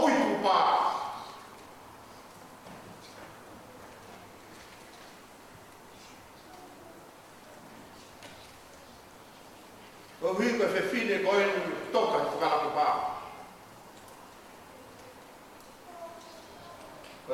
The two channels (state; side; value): identical; both; correlation 1.00